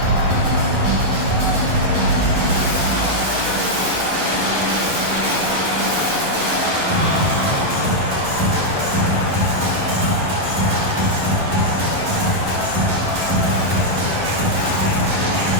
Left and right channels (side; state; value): left; late; 11 ms